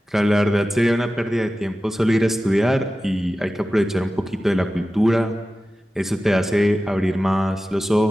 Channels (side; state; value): both; normal; correlation 0.94